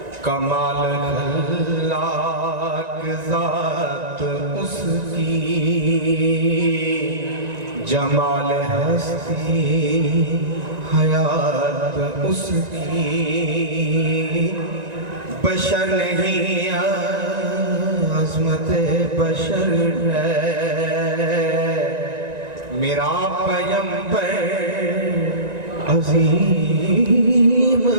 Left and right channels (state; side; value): late; left; 1.9 ms